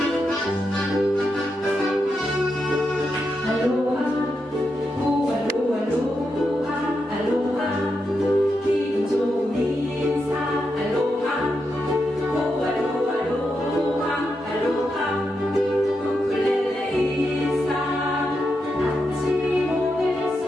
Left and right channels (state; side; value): normal; both; correlation 0.85